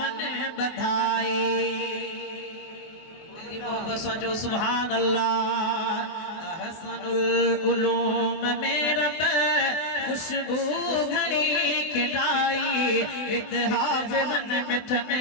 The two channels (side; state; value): right; late; 24 ms